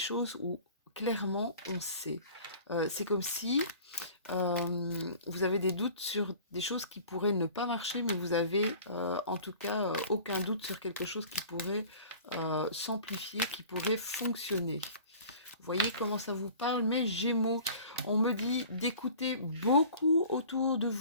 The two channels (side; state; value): both; inverted; correlation -0.45